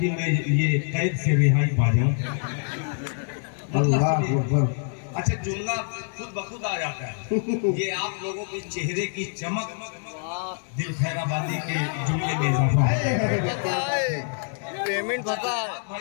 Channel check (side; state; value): right; silent; digital silence